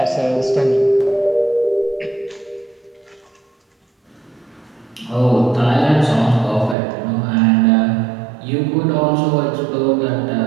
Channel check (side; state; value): left; drops out; at 6.8 s